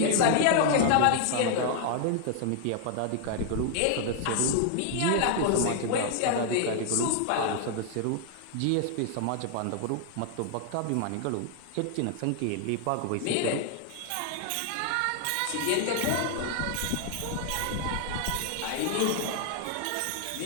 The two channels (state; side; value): different; both; correlation 0.00